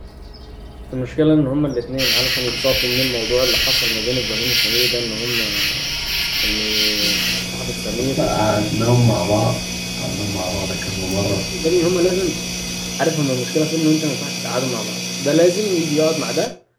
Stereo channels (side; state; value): both; identical; correlation 1.00